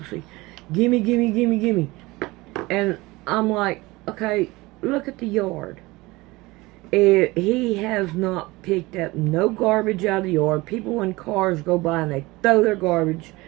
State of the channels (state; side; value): quieter; left; 21.4 dB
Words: Gimme, gimme, gimme, gimme. And I'm like, okay, look at the yard. He has not picked up no garbage out of the yard. People in cars go by and they throw their garbage